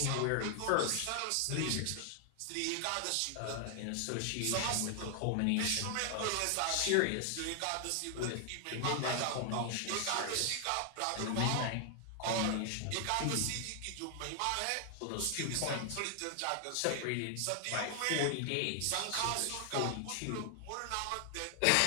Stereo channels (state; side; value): different; both; correlation 0.00